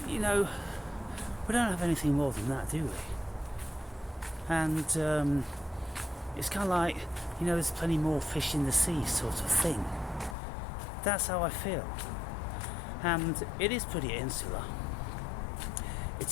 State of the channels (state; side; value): drops out; right; at 10.4 s